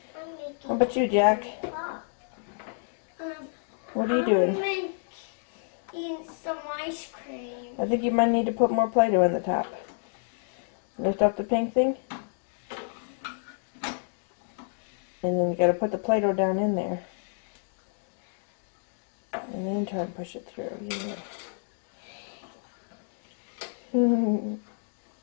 How about you, Jack? What are you doing? I'm making some ice cream. I think you might need to put more Play-Doh in the top. Lift up the pink thing. And then you gotta put the Play-Doh down in there. And then try and push it through. Yeah. Look,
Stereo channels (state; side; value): silent; right; digital silence